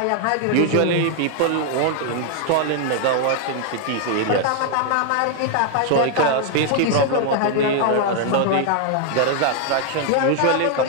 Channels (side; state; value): both; different; correlation 0.00